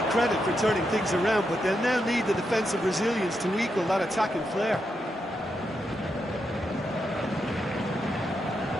credit for turning things around, but they'll now need the defensive resilience to equal that attacking flair.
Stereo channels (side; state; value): both; normal; correlation 0.84